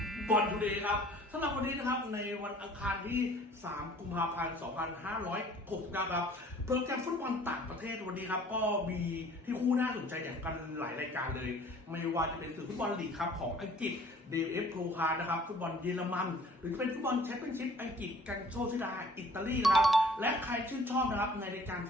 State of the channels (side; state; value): both; normal; correlation 0.52